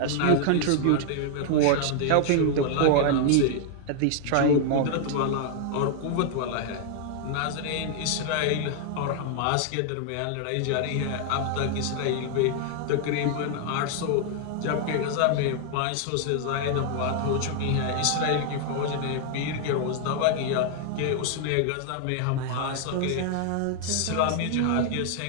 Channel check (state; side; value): different; both; correlation 0.00